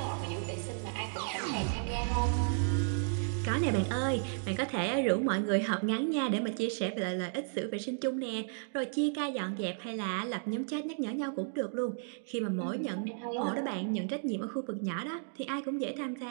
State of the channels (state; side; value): silent; left; digital silence